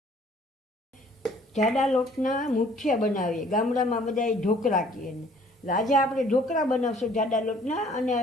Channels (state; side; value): normal; both; correlation 0.57